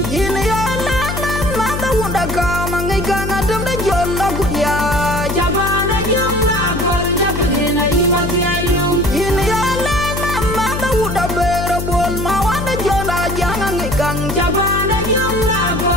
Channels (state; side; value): noise; left; hum, 4 dB below the sound